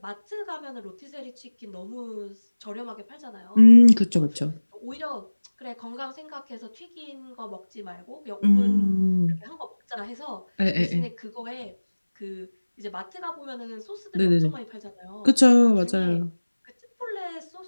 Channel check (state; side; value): inverted; both; correlation -1.00